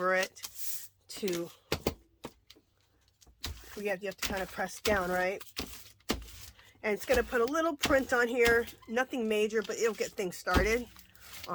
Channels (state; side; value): identical; both; correlation 1.00